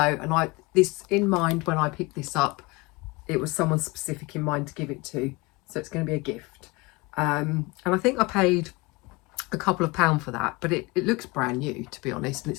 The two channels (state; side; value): quieter; right; 24.9 dB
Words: and this in mind when I picked this up, it was someone specific in mind to give it to. So it's going to be a gift. And I think I paid a couple of pounds for that, but it looks brand new, to be honest, and